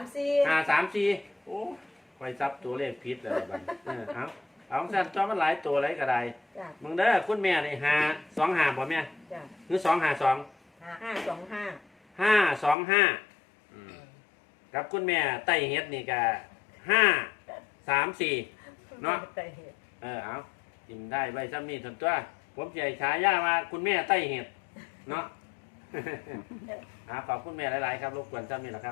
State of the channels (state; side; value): drops out; right; at 12.8 s